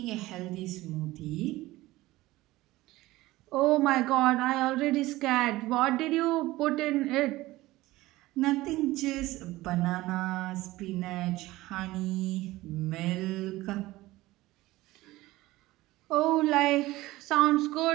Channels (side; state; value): left; quieter; 18.2 dB